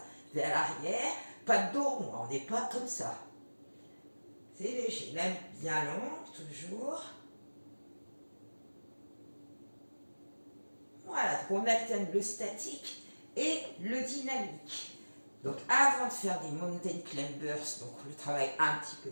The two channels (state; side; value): inverted; both; correlation -1.00